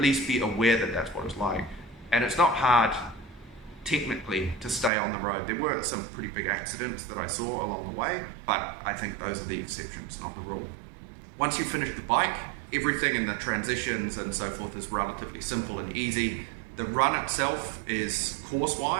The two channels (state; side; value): drops out; left; at 4.9 s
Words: least be aware that that's what it's like. And it's not hard technically to stay on the road. There were some pretty big accidents that I saw along the way, but I think those are the exceptions, not the rule. Once you finish the bike, everything in the transitions and so forth is relatively simple and easy. The run itself is